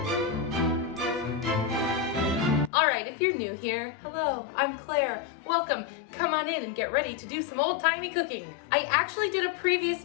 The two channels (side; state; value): right; drops out; at 2.7 s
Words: Alright, if you're new here, hello, I'm Claire. Welcome. Come on in and get ready to do some old-timey cooking. I actually did a previous